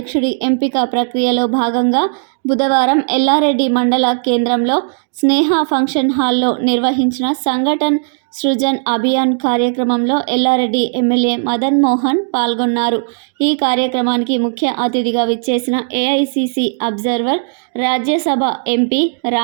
ఎంపిక ప్రక్రియలో భాగంగా బుధవారం ఎల్లారెడ్డి మండల కేంద్రంలో స్నేహ ఫంక్షన్ హాల్లో నిర్వహించిన సంఘటన్ సృజన్ అభియాన్ కార్యక్రమంలో ఎల్లారెడ్డి ఎమ్మెల్యే మదన్ మోహన్ పాల్గొన్నారు. ఈ కార్యక్రమానికి ముఖ్య అతిథిగా విచ్చేసిన AICC observer, Rajya Sabha MP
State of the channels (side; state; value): left; silent; digital silence